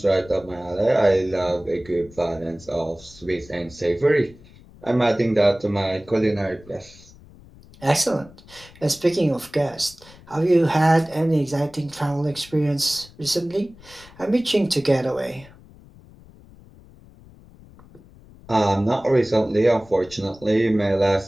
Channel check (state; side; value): noise; left; rumble, 23 dB below the sound